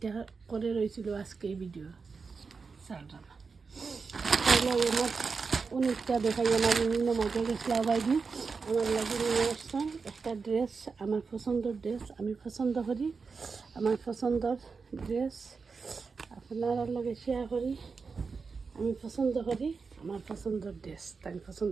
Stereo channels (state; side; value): quieter; left; 4.9 dB